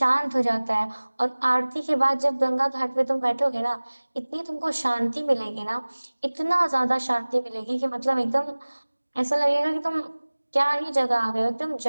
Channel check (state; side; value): inverted; both; correlation -1.00